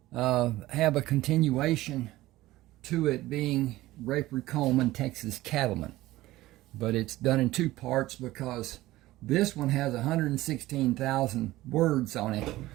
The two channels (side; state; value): left; quieter; 17.0 dB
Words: Have a continuation to it being Rayford Coleman, Texas Cattleman. But it's done in two parts because this one has 116,000 words on it.